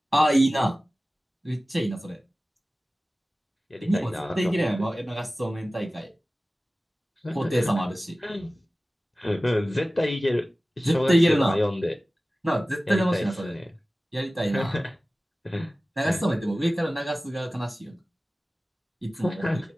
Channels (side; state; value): both; normal; correlation 0.97